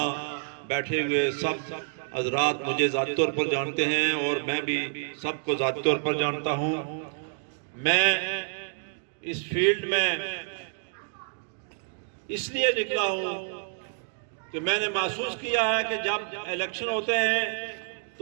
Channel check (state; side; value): silent; left; digital silence